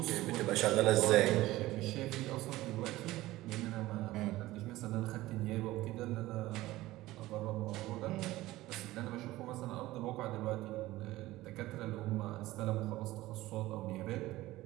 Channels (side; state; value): left; quieter; 17.3 dB